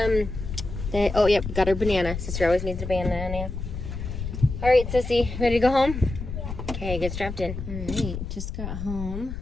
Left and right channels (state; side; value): noise; left; rumble, 6 dB below the sound